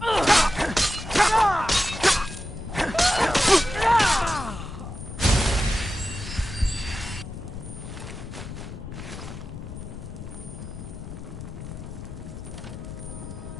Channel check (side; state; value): left; noise; rumble, 10 dB below the sound